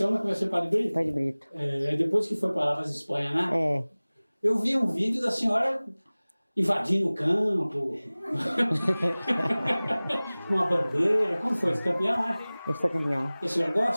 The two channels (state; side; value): inverted; both; correlation -0.99